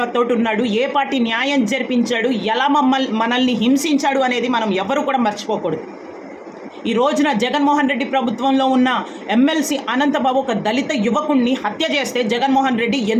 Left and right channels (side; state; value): both; identical; correlation 1.00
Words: ఉన్నాడు, ఏ పార్టీ న్యాయం జరిపించాడు, ఎలా మనల్ని హింసించాడు అనేది మనం ఎవరు కూడా మర్చిపోకూడదు. ఈ రోజున జగన్మోహన్ రెడ్డి ప్రభుత్వంలో ఉన్న ఎమ్మెల్సీ అనంతబాబు ఒక దళిత యువకుణ్ణి హత్య చేస్తే జగన్మోహన్ రెడ్డి